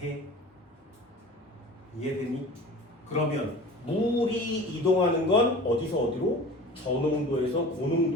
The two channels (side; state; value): both; normal; correlation 0.40